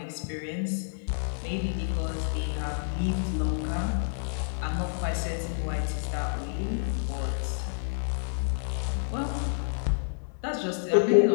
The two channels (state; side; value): silent; right; 59 dB below the other